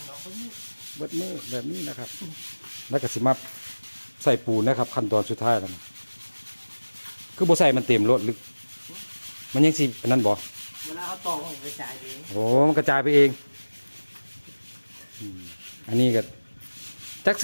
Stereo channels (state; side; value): inverted; both; correlation -1.00